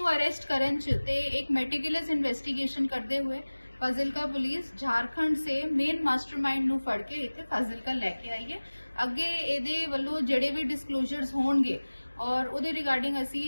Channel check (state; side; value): inverted; both; correlation -1.00